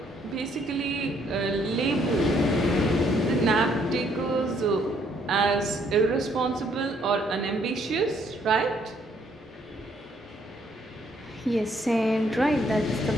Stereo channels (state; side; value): normal; both; correlation 0.68